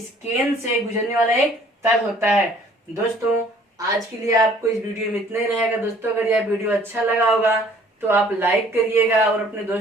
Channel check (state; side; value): normal; both; correlation 0.56